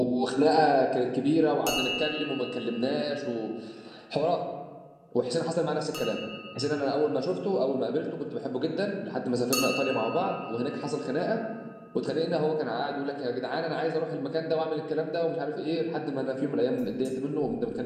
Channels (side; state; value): both; identical; correlation 1.00